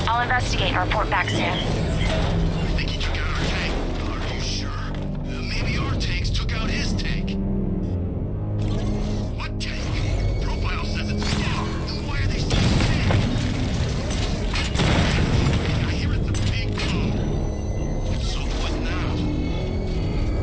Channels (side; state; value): both; identical; correlation 1.00